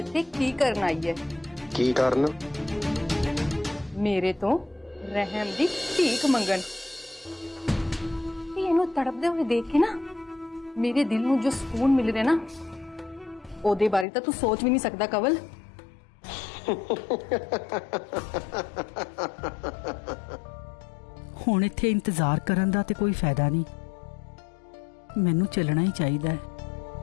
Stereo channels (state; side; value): drops out; right; at 14.1 s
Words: ਕੀ ਕਰਨ ਆਈ ਹੈ। ਕੀ ਕਰਨ? ਮੇਰੇ ਤੋਂ ਰਹਿਮ ਦੀ ਭੀਖ ਮੰਗਣ। ਤੇ ਇਹਨੂੰ ਤੜਪਦੇ ਹੋਏ ਦੇਖ ਕੇ ਨਾ ਮੇਰੇ ਦਿਲ ਨੂੰ ਜੋ ਸਕੂਨ ਮਿਲ ਰਿਹਾ ਨਾ ਉਹਦੇ ਬਾਰੇ ਤਾਂ ਤੂੰ ਸੋਚ ਵੀ ਨਹੀਂ ਸਕਦਾ ਕਵਲ। ਹੁਣ ਇੱਥੇ ਇੰਤਜ਼ਾਰ ਕਰਨ ਦਾ ਤੇ ਕੋਈ ਫਾਇਦਾ ਨਹੀਂ, ਮੈਨੂੰ ਚੱਲਣਾ ਹੀ ਚਾਹੀਦਾ ਹੈ।